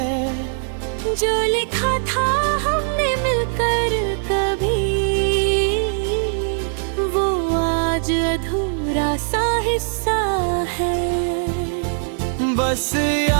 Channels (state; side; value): silent; left; digital silence